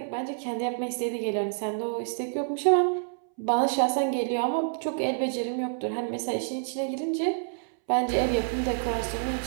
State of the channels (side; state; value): left; silent; 59 dB below the other